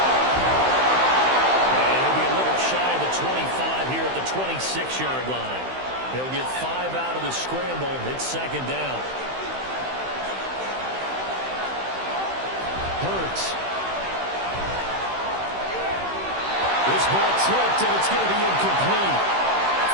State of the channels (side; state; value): left; late; 16 ms